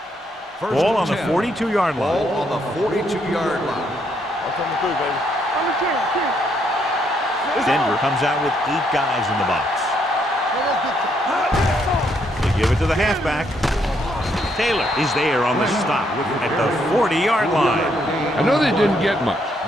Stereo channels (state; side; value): normal; both; correlation 0.73